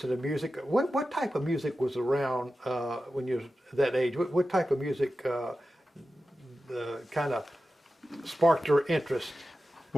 the music. What type of music was around when you were that age? What type of music kind of sparked your interest?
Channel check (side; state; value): both; normal; correlation 0.93